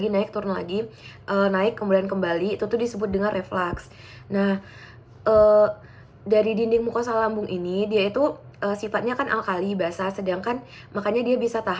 naik turun lagi, naik kemudian kembali. Itu tuh disebut dengan reflux. Nah, dari dinding mukosa lambung ini dia itu sifatnya kan alkali basa, sedangkan makanya dia bisa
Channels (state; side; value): identical; both; correlation 1.00